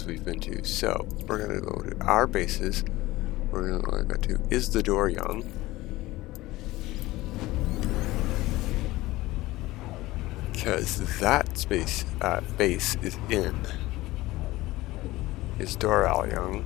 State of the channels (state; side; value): quieter; right; 18.5 dB